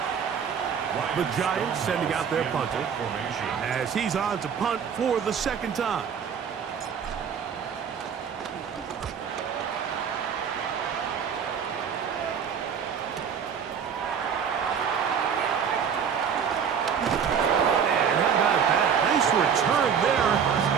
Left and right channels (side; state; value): left; quieter; 7.3 dB